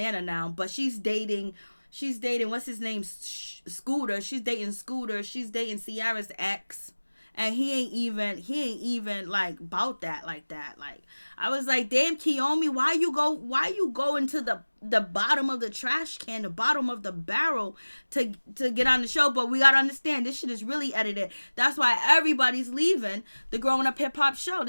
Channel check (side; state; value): both; inverted; correlation -1.00